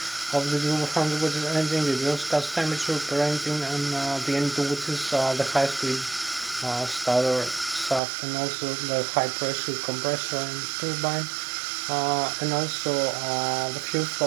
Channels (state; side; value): drops out; left; at 8.0 s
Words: of the turbofan engine, the exhaust gas temperature per engine, and the N2, which is the high speed starter shaft, and also the high pressure compressor and turbine, and also the fuel